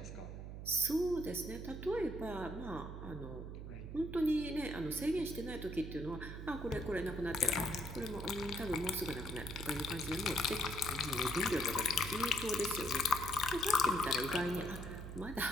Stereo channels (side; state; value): right; noise; hum, 8 dB below the sound